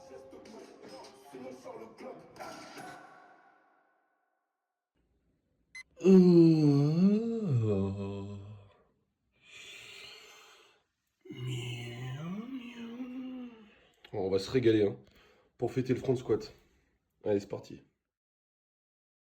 Bon, on va se régaler hein, pour fêter le front squat. Allez, c'est parti.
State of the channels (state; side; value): identical; both; correlation 1.00